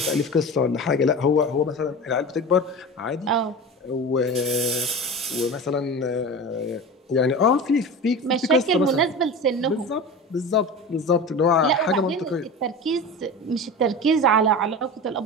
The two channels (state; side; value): normal; both; correlation 0.30